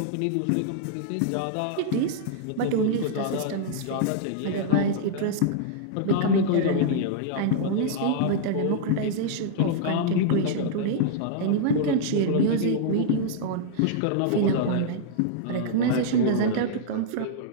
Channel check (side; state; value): both; different; correlation -0.02